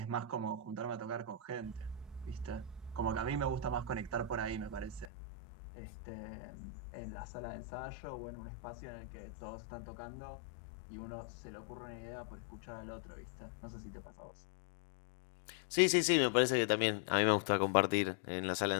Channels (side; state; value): right; drops out; at 5.1 s